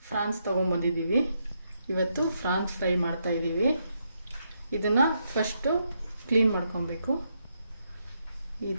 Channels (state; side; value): inverted; both; correlation -0.79